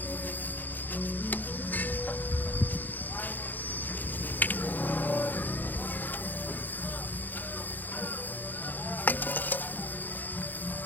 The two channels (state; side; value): late; right; 0.087 ms